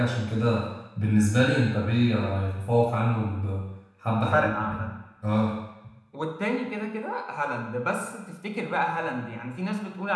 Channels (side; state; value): both; identical; correlation 1.00